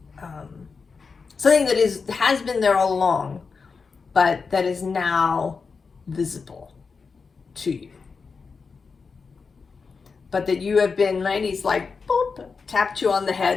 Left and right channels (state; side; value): quieter; right; 5.0 dB